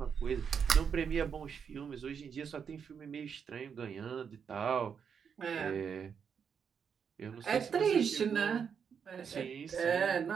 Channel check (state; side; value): quieter; left; 6.9 dB